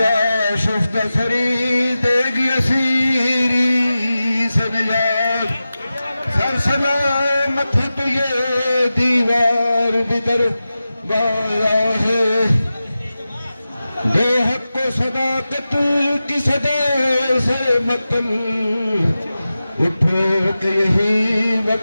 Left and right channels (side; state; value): both; inverted; correlation -0.94